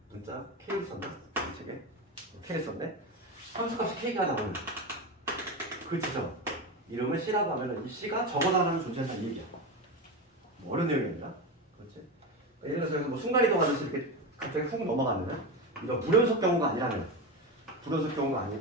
문자 K를 썼나? 이 책에 K를 썼네? 함수값이 K가 나오는 그 지점 이름을 C라고 하면 이 C가 적어도 하나는 존재한다는 얘기야. 뭐 어려운 내용입니다. 그렇지? 예를 들어서 뭐 순간이동하듯이 이렇게 갑자기 훅 넘어가는 이런 불연속 경우가 아니라면, 불연속 경우가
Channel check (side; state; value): both; normal; correlation 0.19